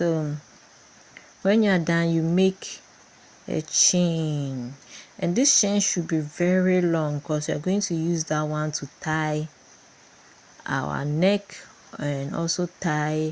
when you're done, you make a chain, and this chain should be very long because you're going to use that one to tie our neck and also tie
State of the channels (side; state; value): both; identical; correlation 1.00